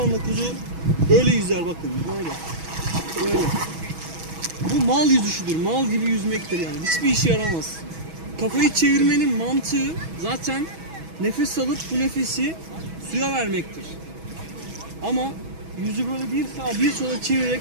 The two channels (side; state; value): left; late; 6.2 ms